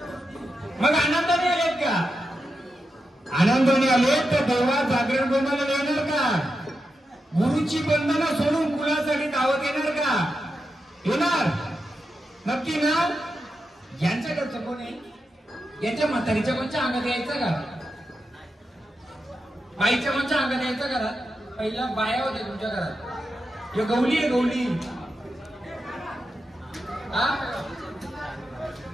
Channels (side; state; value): both; normal; correlation 0.88